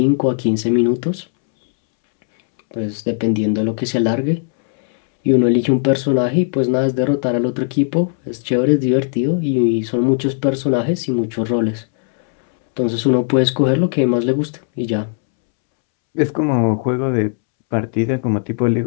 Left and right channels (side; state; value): right; silent; 68 dB below the other